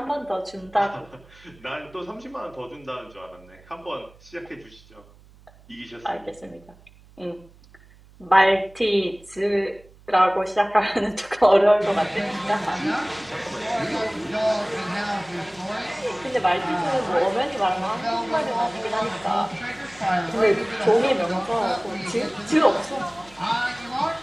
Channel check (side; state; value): right; noise; hum, 25 dB below the sound